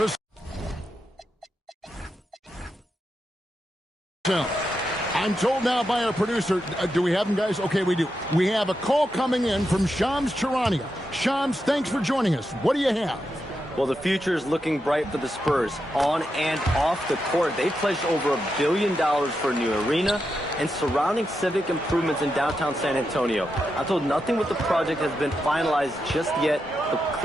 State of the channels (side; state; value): both; normal; correlation 0.86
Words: I'm told now by our producer, do we have him, guys? Okay, we do. We have a call coming in from Shams Charania. Shams, thanks for joining us. What do you have? Well, the future is looking bright for the Spurs. On and off the court, they pledged over $1 billion for a new arena and surrounding civic improvements in downtown San Antonio. I'm told nothing with the project has been finalized just yet, but